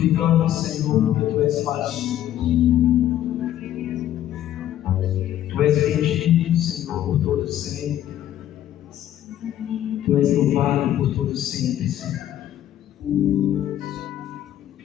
Senhor, porque Tu és maravilhoso. Tu és bendito, Senhor, por todo sempre. Tu és louvado por todo sempre, Senhor.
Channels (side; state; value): right; quieter; 12.0 dB